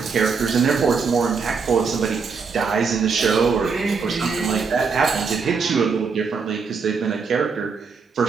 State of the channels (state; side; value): quieter; left; 5.3 dB